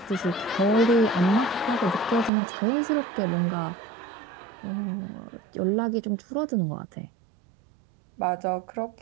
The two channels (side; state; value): left; drops out; at 2.3 s